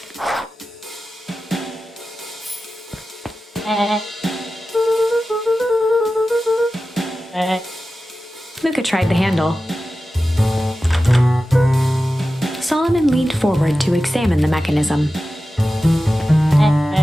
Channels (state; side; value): normal; both; correlation 0.94